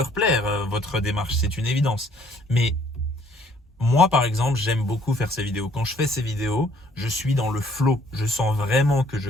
plaire, votre démarche, c'est une évidence. Mais moi, par exemple, j'aime beaucoup faire ces vidéos. Quand je fais ces vidéos, je suis dans le flow. Je sens vraiment que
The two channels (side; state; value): both; normal; correlation 0.62